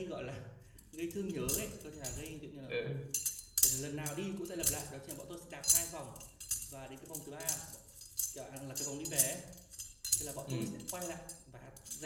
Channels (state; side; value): identical; both; correlation 1.00